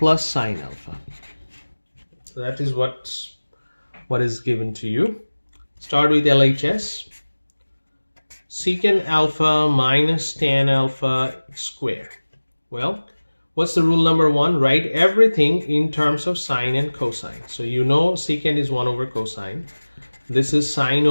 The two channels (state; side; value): inverted; both; correlation -1.00